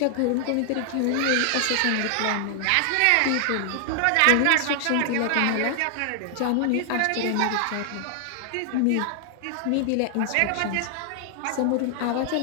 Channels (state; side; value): different; both; correlation 0.00